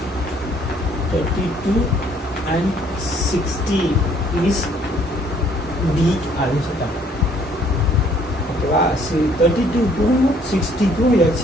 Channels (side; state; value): both; normal; correlation 0.62